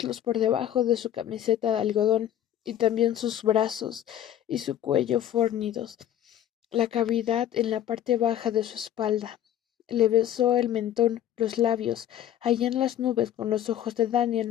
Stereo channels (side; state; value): right; quieter; 11.2 dB